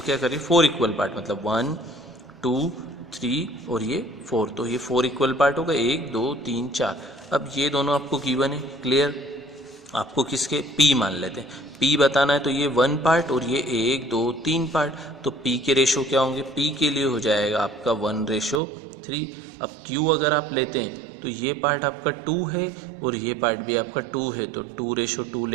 करिए 4 इक्वल पार्ट, मतलब 1 2 3 और ये 4, तो ये 4 इक्वल पार्ट होगा, 1 2 3 4। अब ये दोनों आपको गिवन है, क्लियर। आपको किसके, P मान लेते हैं, P बताना है, तो ये 1 पार्ट और ये 1 2 3 पार्ट, तो P के रेशो क्या होंगे, P के लिए हो जाएगा आपका 1:3। अब Q अगर आप लेते हैं तो ये पार्ट आपका 2 है और ये पार्ट भी आपका 2 है, तो 2:2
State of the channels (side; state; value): left; drops out; at 18.6 s